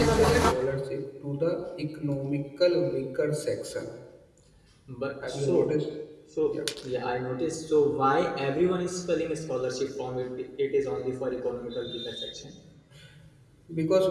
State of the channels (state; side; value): identical; both; correlation 1.00